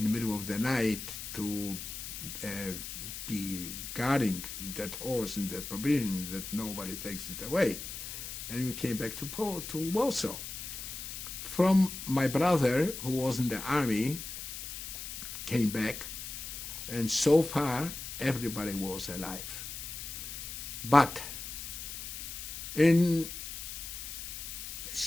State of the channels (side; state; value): left; noise; hiss, 8 dB below the sound